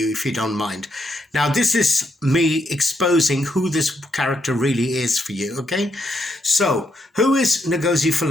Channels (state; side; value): normal; both; correlation 0.78